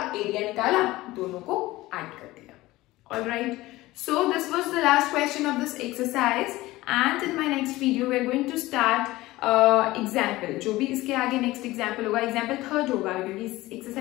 एरिया निकाला, दोनों को ऐड कर दिया। Alright, so this was the last question of this exercise and in my next video we are going to start example, जो भी इसके आगे नेक्स्ट एग्जाम्पल होगा, एग्जाम्पल थर्ड होगा क्योंकि इस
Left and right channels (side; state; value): right; quieter; 18.4 dB